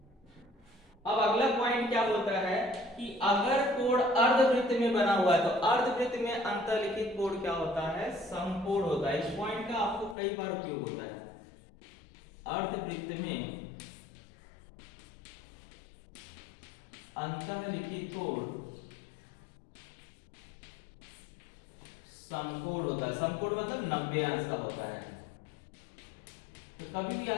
अब अगला पॉइंट क्या बोलता है कि अगर कोड अर्धवृत्त में बना हुआ है तो अर्धवृत्त में अंतर्लिखित कोड क्या होता है, समकोण होता है। इस पॉइंट का आपको कई बार उपयोग होता है। अर्धवृत्त में अंतर्लिखित कोड समकोण होता है। समकोण मतलब 90 अंश का होता है। तो कभी भी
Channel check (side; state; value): right; drops out; at 10.2 s